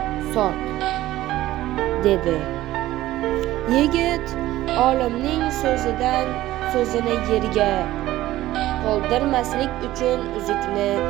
sot, dedi. Yigit olimning so'zini yerga qoldirmaslik uchun uzukni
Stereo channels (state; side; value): quieter; left; 15.5 dB